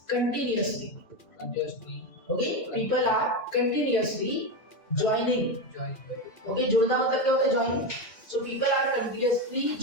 continuously, okay, people are continuously joining. Okay, जुड़ना मतलब क्या होता है? joining. So people are continuously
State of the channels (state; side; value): late; right; 2.4 ms